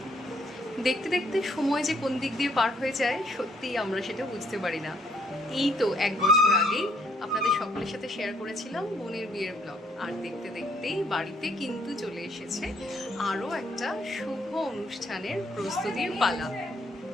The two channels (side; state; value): both; normal; correlation 0.67